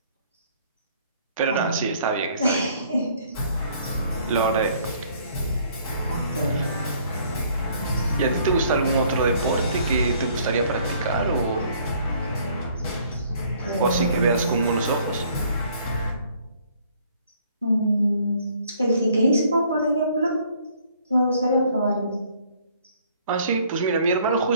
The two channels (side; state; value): both; inverted; correlation -0.61